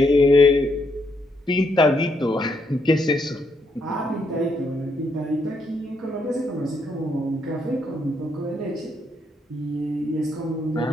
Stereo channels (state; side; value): normal; both; correlation 0.76